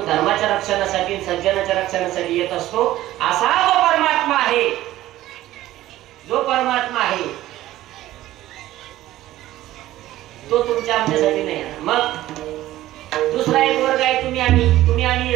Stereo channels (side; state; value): left; quieter; 15.0 dB